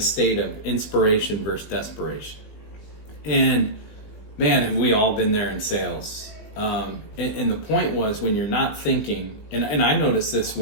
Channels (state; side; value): late; right; 19 ms